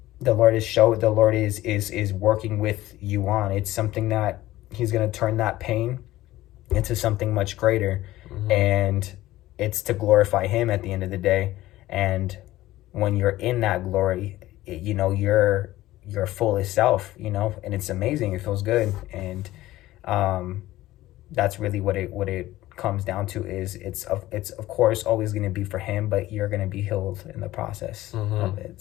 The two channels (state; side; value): quieter; right; 16.1 dB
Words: the Lord is working with you on. It's something that he's going to turn that pain into something much greater, and it's to glorify him at the end of the day. And when you're in that glory, you know, you're your fullest self, you know, and it's amazing. It feels good. And that's really what it comes down to. Is it's of course always going to be for him, but you're going to be healed in the process of it.